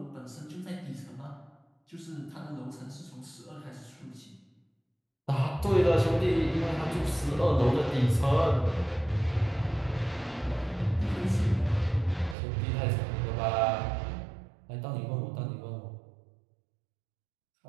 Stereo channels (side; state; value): left; drops out; at 12.4 s